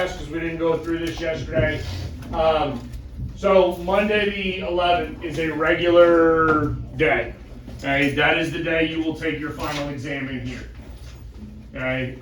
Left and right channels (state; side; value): identical; both; correlation 1.00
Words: because we didn't go through this yesterday. So Monday the 11th is a regular day. Okay, that is the day you will take your final exam in here. Okay,